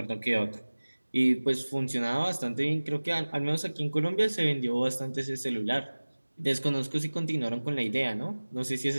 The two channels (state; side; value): inverted; both; correlation -1.00